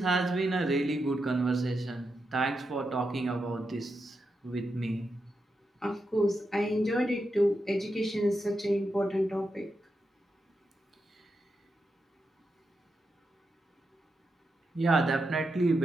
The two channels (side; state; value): both; normal; correlation 0.86